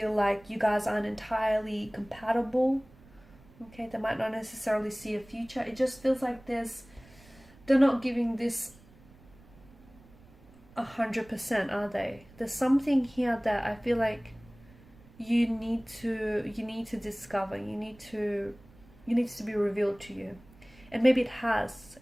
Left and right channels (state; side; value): noise; right; rumble, 25 dB below the sound